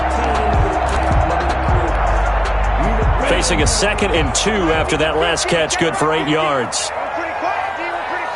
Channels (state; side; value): identical; both; correlation 1.00